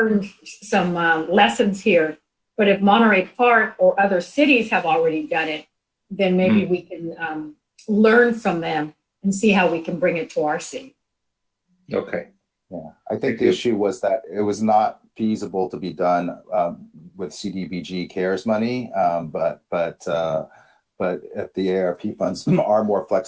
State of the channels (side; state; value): both; identical; correlation 1.00